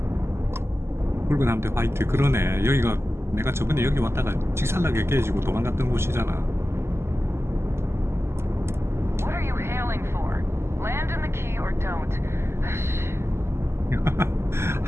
붉은 함대 화이트. 그러네. 여기가 내가 저번에 여기 왔다가 직살나게 깨지고 도망갔던 곳이잖아. What are you hailing for? Land in the key or don't.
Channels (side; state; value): left; late; 0.12 ms